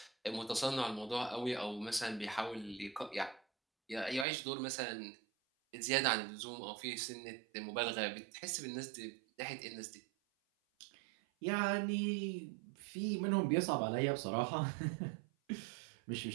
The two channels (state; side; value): drops out; left; at 4.2 s